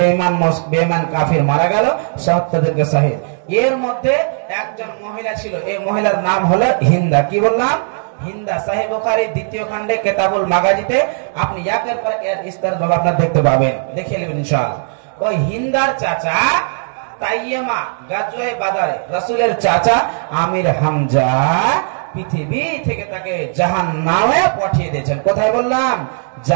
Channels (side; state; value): left; silent; digital silence